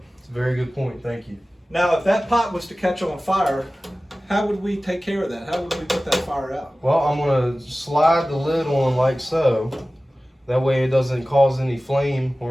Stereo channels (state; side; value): normal; both; correlation 0.97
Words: It's a very good point. Thank you. Now, if that pot was to catch on fire, how would we take care of that? How would we put that fire out? Well, I'm going to slide the lid on like so. That way it doesn't cause any flame